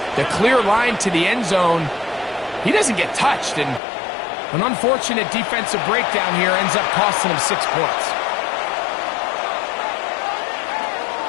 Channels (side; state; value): right; drops out; at 3.8 s